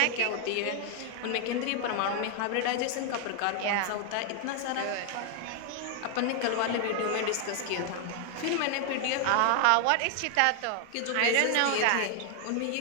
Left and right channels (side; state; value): both; different; correlation 0.00